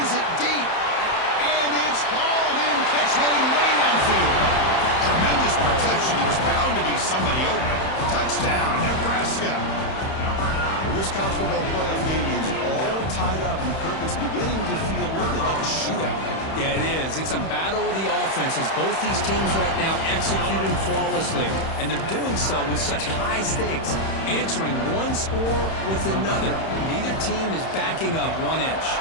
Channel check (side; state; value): right; late; 31 ms